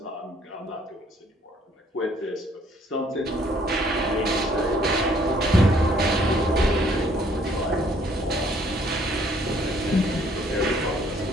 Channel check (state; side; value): normal; both; correlation 0.63